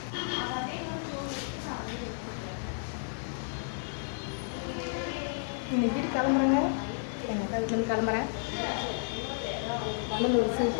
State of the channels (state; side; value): silent; right; digital silence